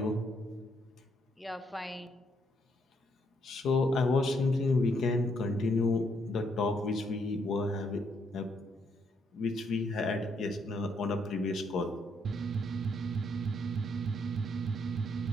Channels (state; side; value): normal; both; correlation 0.73